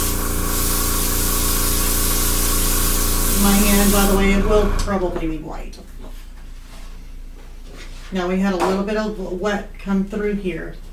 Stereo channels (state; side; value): identical; both; correlation 1.00